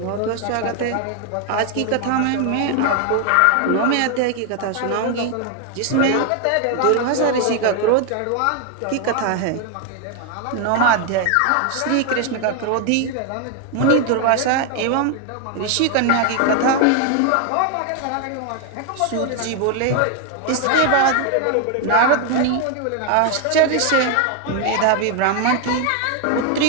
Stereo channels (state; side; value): different; both; correlation 0.01